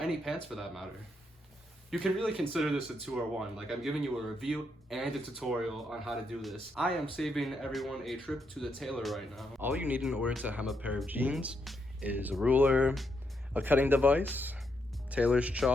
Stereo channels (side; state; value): both; normal; correlation 0.79